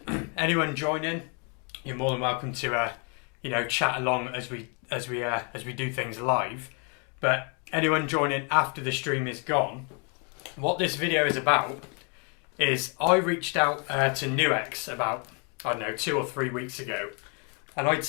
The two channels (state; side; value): quieter; right; 36.7 dB